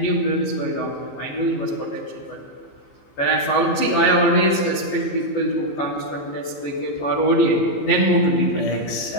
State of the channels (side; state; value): right; late; 14 ms